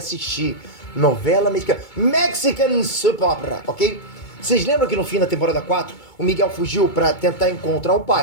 Novela mexicana. Mexican Soap Opera, ok? Vocês lembram que no fim da temporada 4, o Miguel fugiu pra tentar encontrar o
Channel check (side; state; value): right; late; 2.2 ms